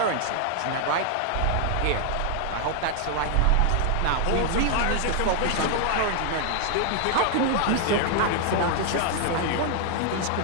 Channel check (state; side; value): different; both; correlation 0.00